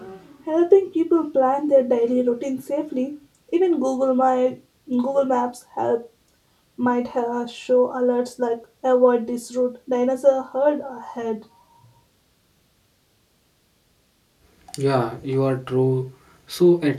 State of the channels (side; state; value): both; identical; correlation 1.00